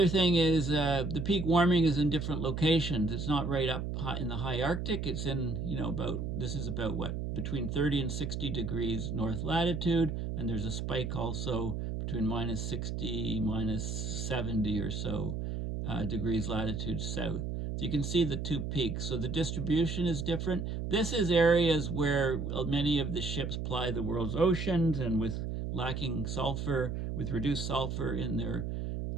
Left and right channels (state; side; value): noise; right; hum, 3 dB below the sound